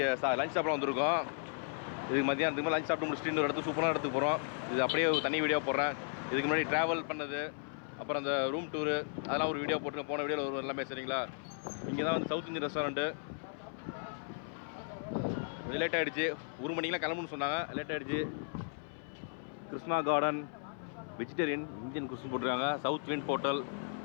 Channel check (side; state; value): right; silent; 54 dB below the other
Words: லஞ்ச் சாப்பிட வந்திருக்கோம். இதுக்கு மதியானத்துக்கு லஞ்ச் சாப்பிட்டு முடிச்சுட்டு இன்னொரு இடத்துக்கு சூப்பரான இடத்துக்கு போகிறோம். இது அப்படியே தனி வீடியோ போடுறேன். இதுக்கு முன்னாடி ட்ராவல் பண்ணது, அப்புறம் அந்த ரூம் டூரு, அதெல்லாம் ஒரு வீடியோ போட்டுருக்கேன். போன வீடியோவில் ஒரு எல்லாமே சரிங்களா. இங்கே தான் வந்து சவுத் இந்தியன் ரெஸ்டாரண்ட்டு. லேட் ஆகிடுச்சு, 1 மணிக்கெலாம் கிளம்புன்னு சொன்னாங்க. லேட் ஆகிடுச்சு. கிருஷ்ணா கார்டன் வெஜிடேரியன் இந்தியன் குஸ்ன்னு போட்டிருக்காங்க. சவுத் விண்ட் ஹோட்டல்